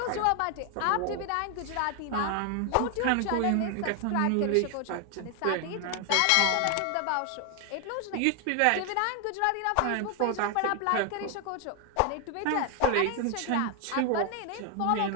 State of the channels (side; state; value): both; different; correlation 0.00